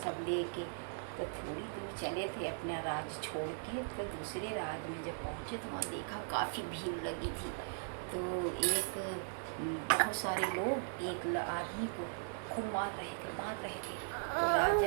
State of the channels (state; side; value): silent; left; digital silence